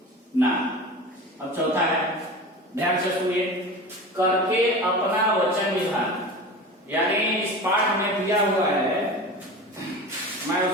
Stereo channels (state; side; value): normal; both; correlation 0.32